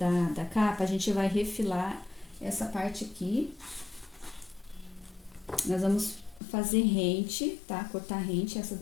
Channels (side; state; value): right; drops out; at 6.4 s